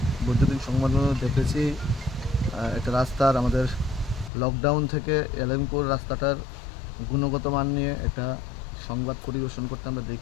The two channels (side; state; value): right; drops out; at 4.3 s